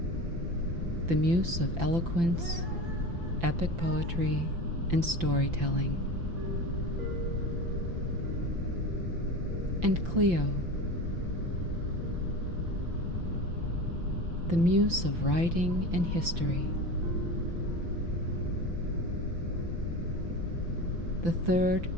the Muse of eloquence, epic poetry, and storytelling. And Cleo, the Muse of writing and history. The third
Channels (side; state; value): left; late; 5.9 ms